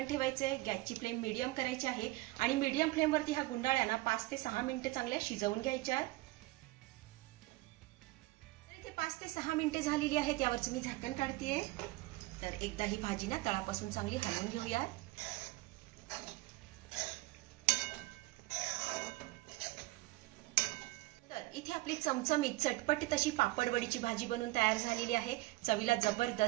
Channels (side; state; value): left; quieter; 20.4 dB